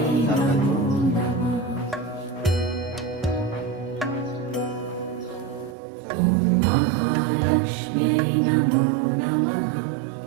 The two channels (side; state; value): left; drops out; at 5.8 s